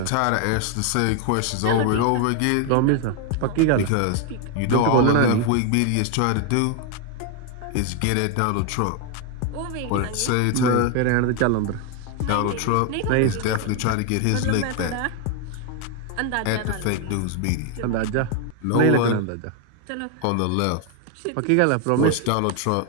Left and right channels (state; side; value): different; both; correlation 0.01